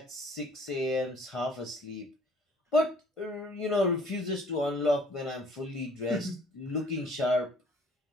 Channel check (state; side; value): normal; both; correlation 0.56